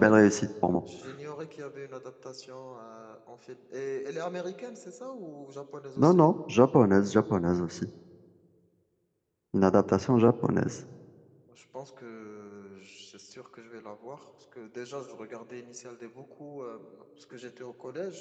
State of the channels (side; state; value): both; identical; correlation 1.00